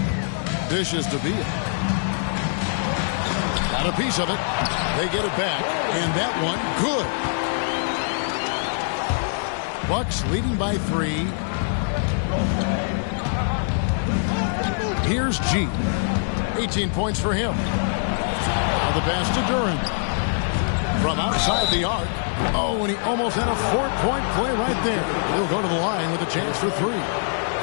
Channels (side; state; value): right; silent; digital silence